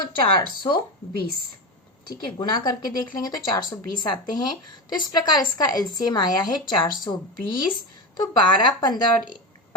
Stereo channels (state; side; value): normal; both; correlation 0.19